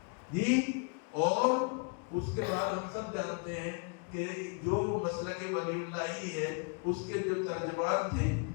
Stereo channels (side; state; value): right; quieter; 35.5 dB